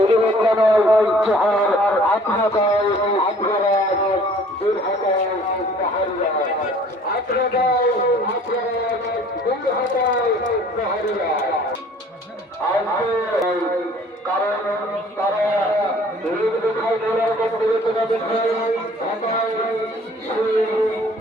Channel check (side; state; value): both; normal; correlation 0.53